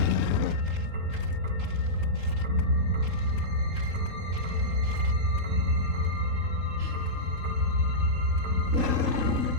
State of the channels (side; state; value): left; late; 3.7 ms